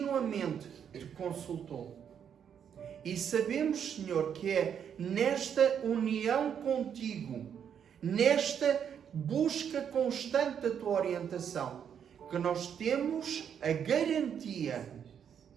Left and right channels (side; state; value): left; quieter; 8.2 dB